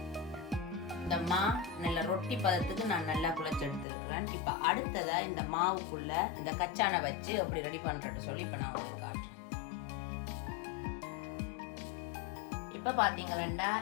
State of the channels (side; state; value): right; drops out; at 3.9 s